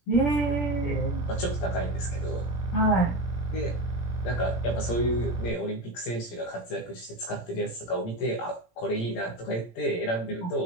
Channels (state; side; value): late; right; 17 ms